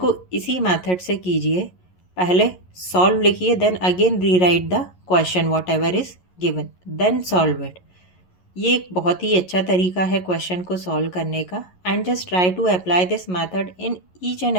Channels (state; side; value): late; right; 11 ms